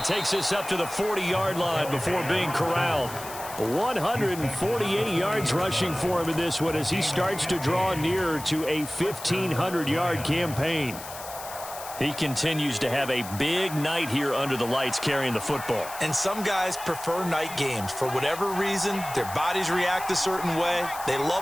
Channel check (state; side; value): noise; left; hiss, 13 dB below the sound